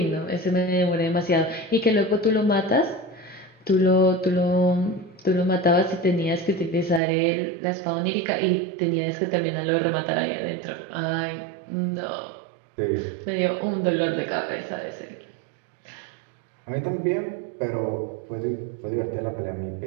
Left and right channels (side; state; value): left; drops out; at 7.0 s